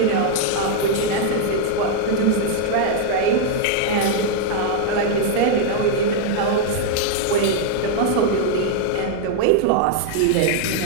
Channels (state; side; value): different; both; correlation 0.00